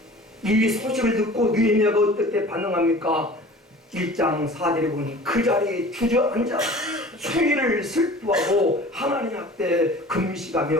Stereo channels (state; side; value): normal; both; correlation 0.43